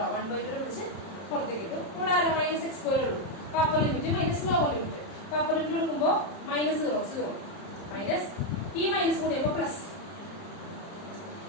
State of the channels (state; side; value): late; right; 30 ms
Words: 1/2 പിടിച്ച് പുറത്തേക്ക് ഇട്ടു. ഇവിടെ ആരാ മൈനസ് എക്സ് സ്ക്വയർ ഉള്ളൂ. അപ്പൊ upper limit minus lower limit. അപ്പൊ അപ്പർ ലിമിറ്റ് കൊടുക്കുമ്പോൾ -0 മൈനസ് ഈ മൈനസ് കൂടി ആകുമ്പോൾ പ്ലസ്